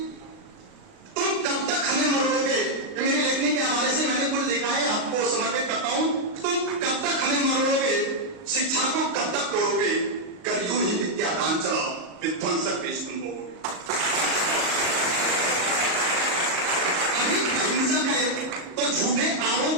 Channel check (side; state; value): left; late; 38 ms